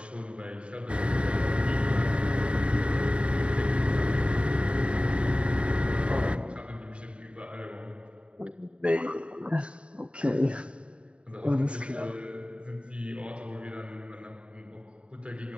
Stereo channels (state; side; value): late; left; 0.058 ms